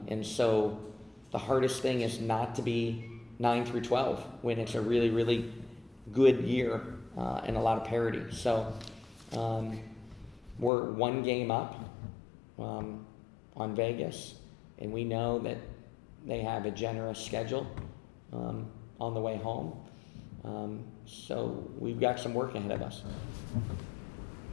so the hardest thing is not to be 9 through 12 when it's a really, really good year and a lot of parity. So we're 1 game up on Vegas, and we know that they have a generous schedule on the way home. So we've got some work ahead of us.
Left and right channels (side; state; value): right; drops out; at 10.7 s